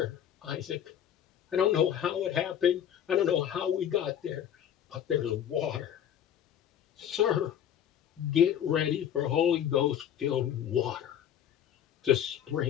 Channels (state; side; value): quieter; right; 9.7 dB